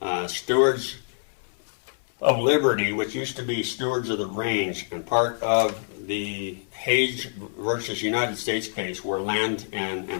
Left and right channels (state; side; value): silent; right; 60 dB below the other